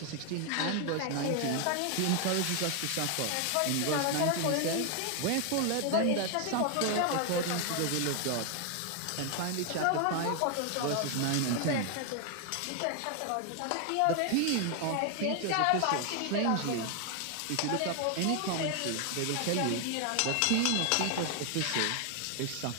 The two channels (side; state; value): both; different; correlation 0.00